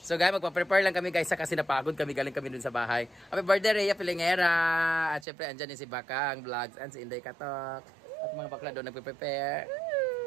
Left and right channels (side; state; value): left; drops out; at 5.2 s